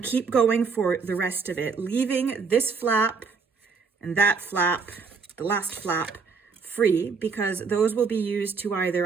keep going for the rest of it, leaving this flap and that flap, the last flap, free, because those will be used to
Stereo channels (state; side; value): quieter; left; 5.1 dB